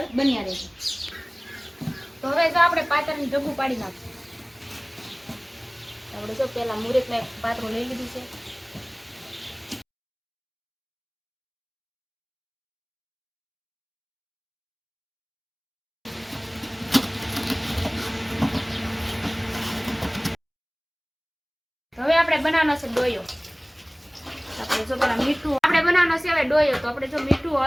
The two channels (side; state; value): both; identical; correlation 1.00